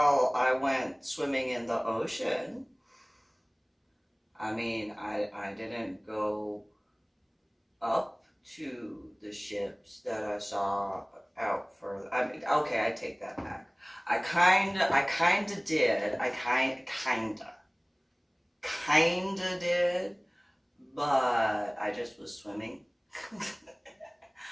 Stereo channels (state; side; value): identical; both; correlation 1.00